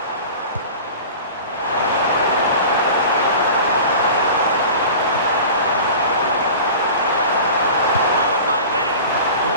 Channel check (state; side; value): inverted; both; correlation -0.37